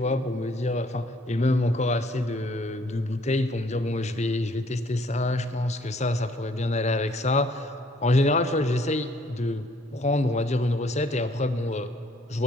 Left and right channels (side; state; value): both; normal; correlation 0.62